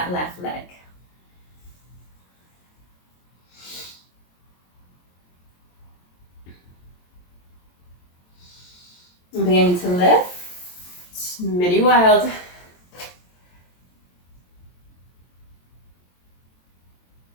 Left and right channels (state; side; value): late; right; 22 ms